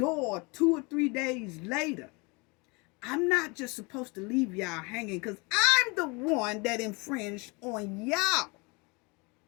2 or 3 days later, I'm not just supposed to leave y'all hanging, because I'm the one that infringed on y'all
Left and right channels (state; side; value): quieter; right; 28.6 dB